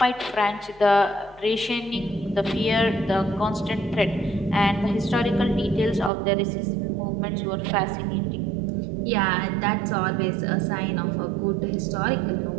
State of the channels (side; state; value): left; drops out; at 6.1 s